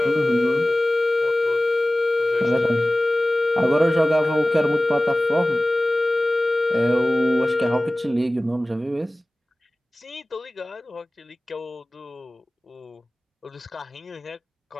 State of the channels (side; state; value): both; normal; correlation 0.97